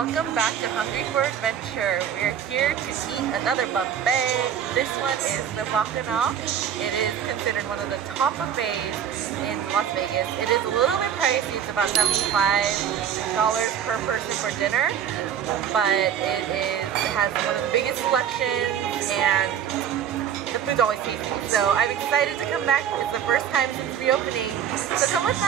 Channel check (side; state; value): left; quieter; 9.0 dB